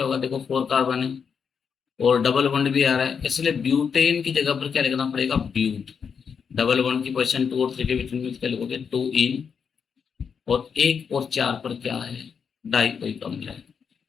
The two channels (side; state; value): right; quieter; 6.5 dB